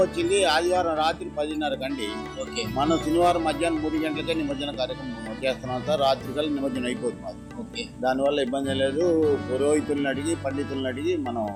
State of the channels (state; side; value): identical; both; correlation 1.00